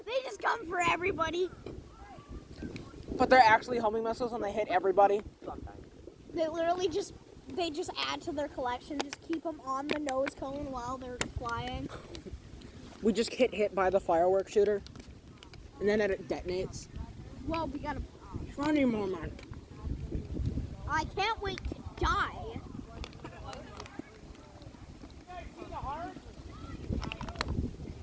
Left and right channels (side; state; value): both; identical; correlation 1.00